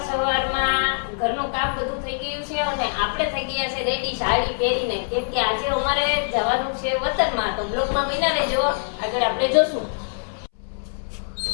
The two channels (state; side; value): silent; right; 63 dB below the other